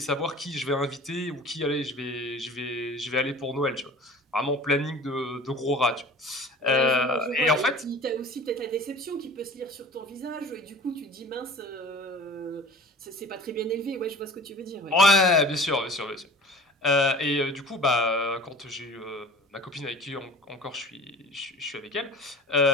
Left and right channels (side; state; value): both; normal; correlation 0.42